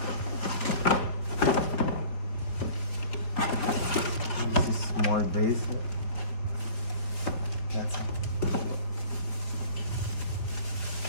This is small base. That's it.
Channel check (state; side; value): late; right; 4.5 ms